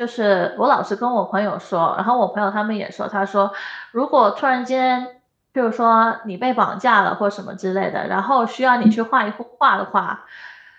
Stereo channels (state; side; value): identical; both; correlation 1.00